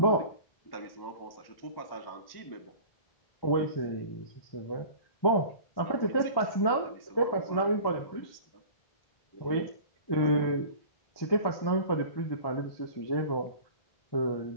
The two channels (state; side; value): late; right; 1.1 ms